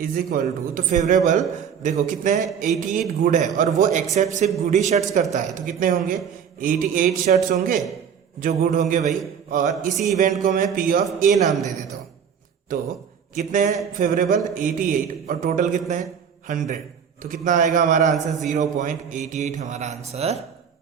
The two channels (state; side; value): quieter; left; 7.6 dB